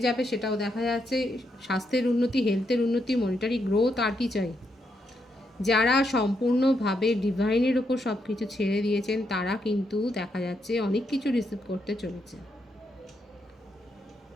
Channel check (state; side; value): normal; both; correlation 0.80